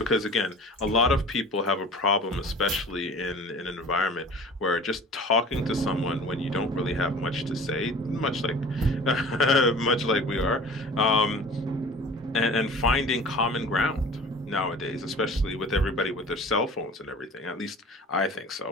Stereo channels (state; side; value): normal; both; correlation 0.42